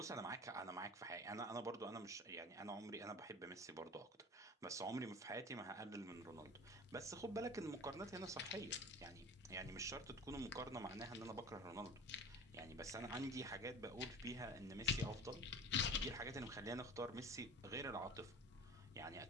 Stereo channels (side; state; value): both; normal; correlation 0.37